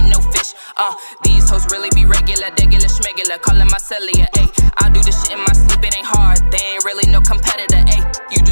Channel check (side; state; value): both; inverted; correlation -1.00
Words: no fish, these hoes really be regular, schmegular, calling my cellular, ayy. I do this shit in my sleep, it ain't hard, they ain't really no competitor, ayy. You do